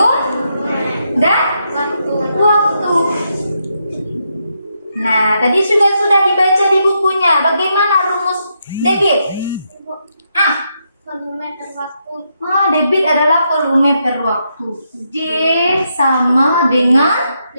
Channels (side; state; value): both; inverted; correlation -0.80